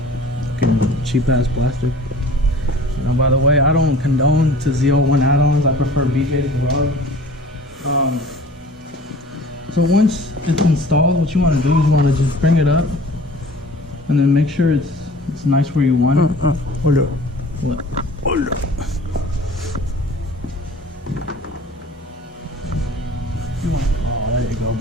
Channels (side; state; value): both; normal; correlation 0.45